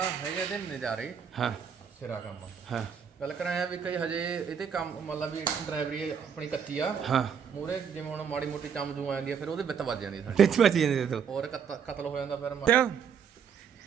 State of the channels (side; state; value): left; quieter; 7.2 dB